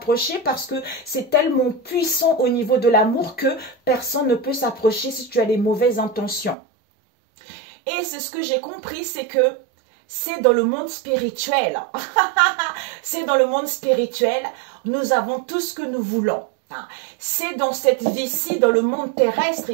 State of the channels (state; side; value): drops out; left; at 6.6 s